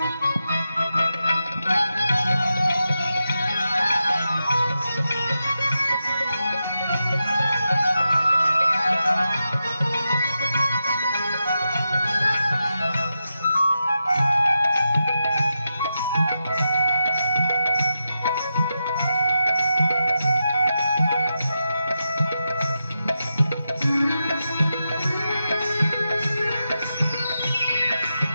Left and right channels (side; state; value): both; inverted; correlation -0.88